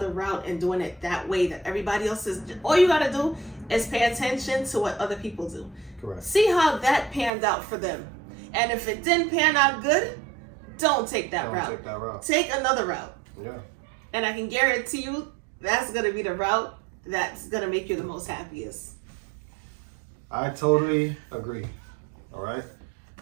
route and doing it that way that everybody else is. All you got to do is pay attention to what other people do. Correct. See how that panned out for them. And if it didn't pan out good, don't take that route. Take that route. Take another route. Yeah. And I can guarantee you that's going to be the route that's going to make you the most happiest. I totally agree. All right.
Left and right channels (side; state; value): left; drops out; at 7.3 s